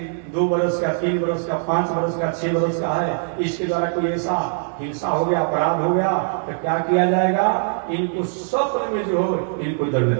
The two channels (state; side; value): silent; left; digital silence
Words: 2 वर्ष का 3 वर्ष का 5 वर्ष का 6 वर्ष का है, इसके द्वारा कोई ऐसा हिंसा हो गया अपराध हो गया तो क्या किया जाएगा, इनको स्वप्न में जो हो इनको दंड